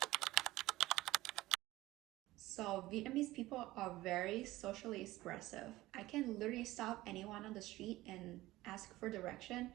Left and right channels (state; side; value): quieter; left; 17.6 dB